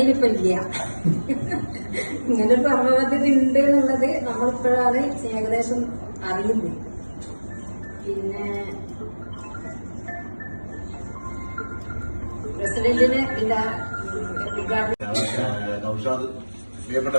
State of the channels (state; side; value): inverted; both; correlation -1.00